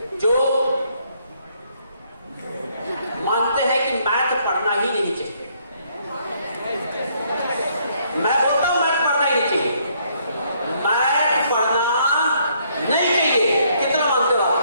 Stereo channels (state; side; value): inverted; both; correlation -0.68